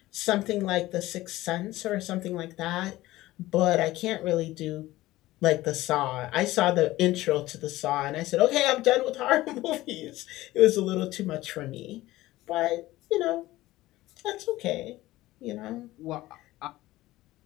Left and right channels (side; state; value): right; quieter; 17.1 dB